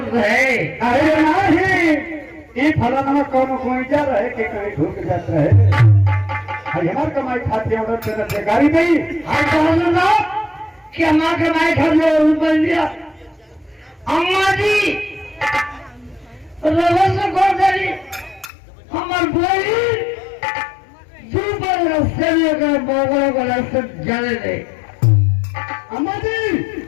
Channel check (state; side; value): drops out; right; at 18.5 s